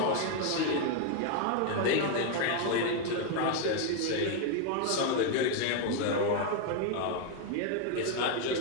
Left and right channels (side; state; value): both; different; correlation 0.01